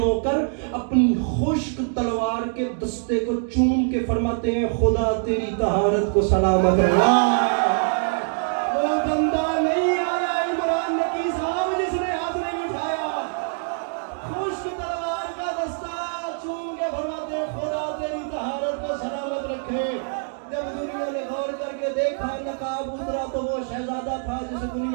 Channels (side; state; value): left; silent; 63 dB below the other